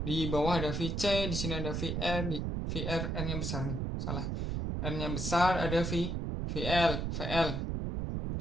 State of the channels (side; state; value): right; noise; rumble, 1 dB below the sound